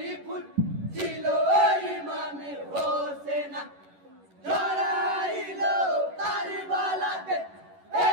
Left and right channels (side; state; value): left; late; 11 ms